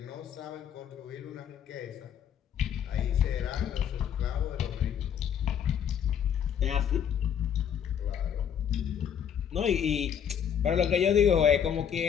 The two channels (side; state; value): right; quieter; 8.5 dB